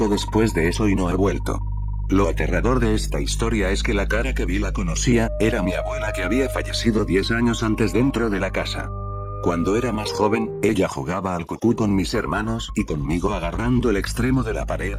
después de eso y no he vuelto. Lo aterrador de esta historia es que la cara que vi la conocía, era mi abuela que había fallecido 10 años antes dentro de la casa. Cuando era más joven, ella jugaba al cucú con mis hermanos y conmigo agarrando el extremo de la pared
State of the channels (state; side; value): identical; both; correlation 1.00